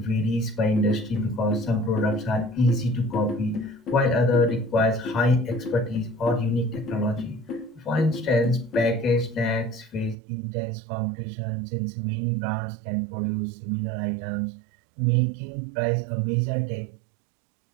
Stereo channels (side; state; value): left; drops out; at 10.2 s